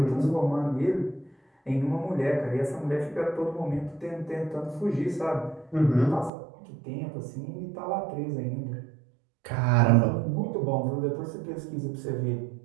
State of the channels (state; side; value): drops out; left; at 6.3 s